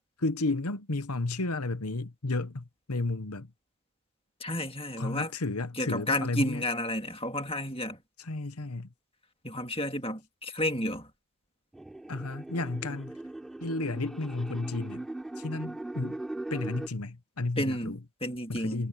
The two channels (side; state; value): both; normal; correlation 0.48